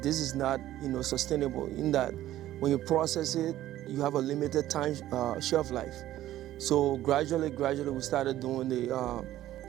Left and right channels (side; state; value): left; quieter; 13.8 dB